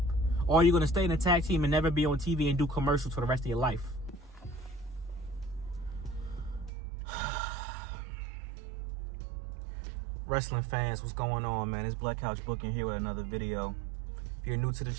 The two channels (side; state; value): left; drops out; at 6.7 s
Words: Or are you going to stay in a tag team and never be on TV and do commercials for the rest of your life? Wrestling fans, what's going on, man? It's Black Couch Booking here with another video. If you're new to the